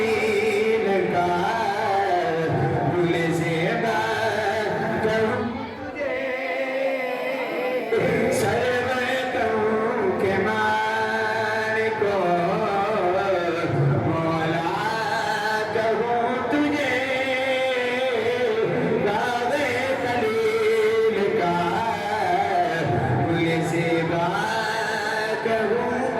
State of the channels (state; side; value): identical; both; correlation 1.00